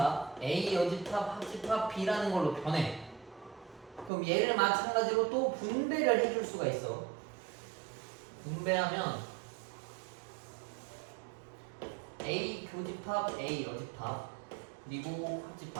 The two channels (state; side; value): drops out; left; at 4.1 s